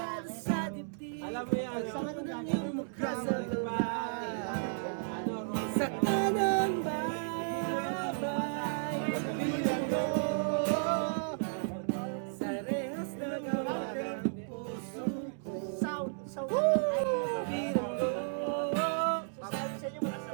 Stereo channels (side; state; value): left; silent; digital silence